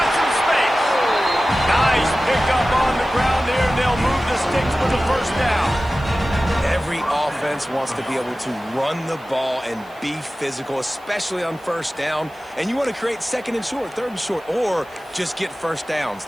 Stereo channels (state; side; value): noise; right; hiss, 28 dB below the sound